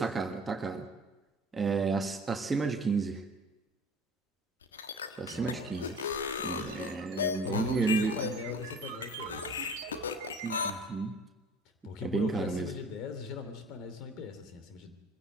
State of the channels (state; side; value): normal; both; correlation 0.45